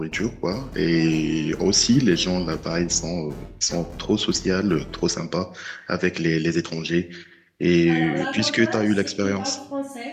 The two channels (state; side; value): identical; both; correlation 1.00